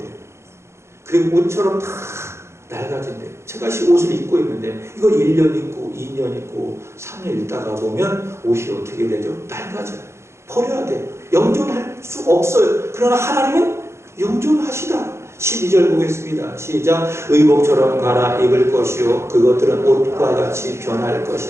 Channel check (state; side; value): late; left; 0.13 ms